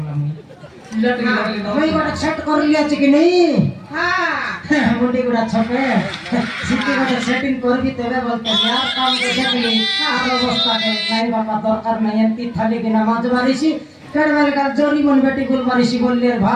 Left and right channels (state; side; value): identical; both; correlation 1.00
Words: মুই গট সেট করলি আছে কি নাই হ্যাঁ মুন্ডি গুড়া ছকে সিটি গট সেটিং করবি তবে বলতে यार কাম কে দেখলি আর অবস্থা কে নাই বাবা দরকার নাই এমতি থালি কি নামাজ বারিছি কেড়বেল কার জরি মন বেটি গুল বারিছি বললি আর